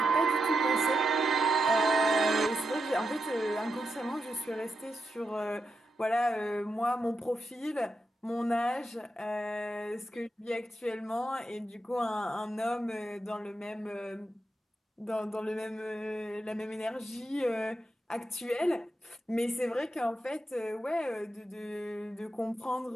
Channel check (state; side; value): normal; both; correlation 0.86